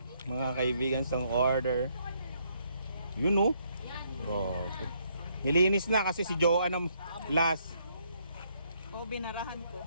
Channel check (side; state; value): both; inverted; correlation -0.71